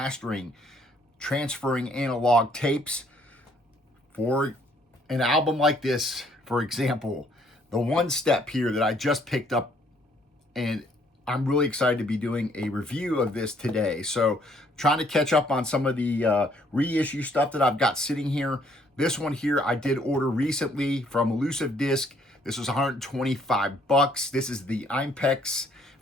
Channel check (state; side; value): normal; both; correlation 0.65